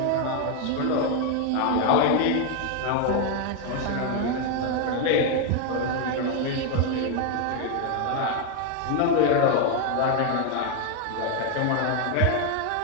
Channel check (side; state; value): both; different; correlation 0.01